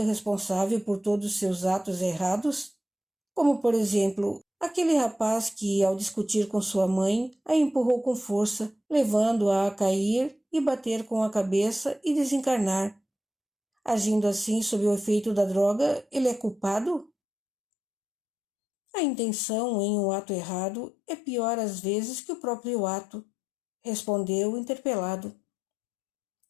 responsável por todos os seus atos errados? Como, por exemplo, aquele rapaz que, ao discutir com sua mãe, a empurrou com força, levando-a a cair e bater com a cabeça e desencarnar. Agindo assim sob o efeito da droga, ele é culpado? A intenção em um ato errado é pior às vezes que o próprio ato, respondeu interpelado.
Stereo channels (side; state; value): right; drops out; at 17.1 s